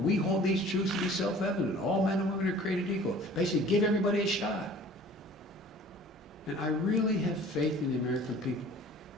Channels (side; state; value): both; normal; correlation 0.47